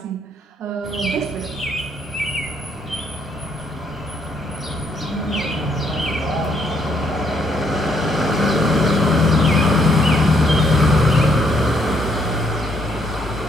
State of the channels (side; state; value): both; normal; correlation 0.70